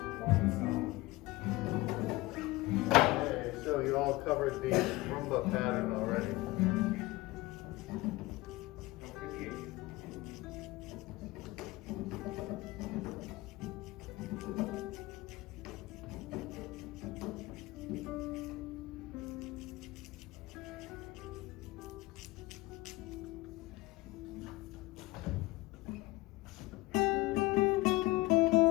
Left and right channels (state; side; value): quieter; right; 20.2 dB